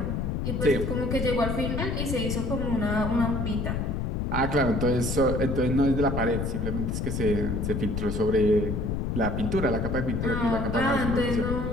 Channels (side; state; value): left; noise; rumble, 1 dB below the sound